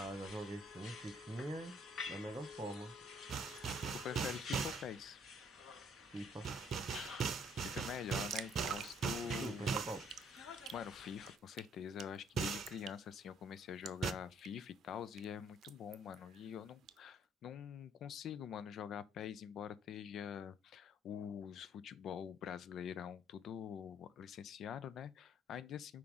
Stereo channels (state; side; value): normal; both; correlation 0.63